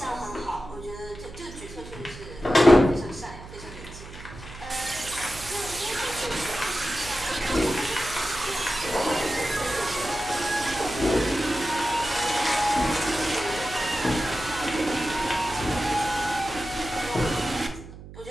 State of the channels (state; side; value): noise; right; hum, 15 dB below the sound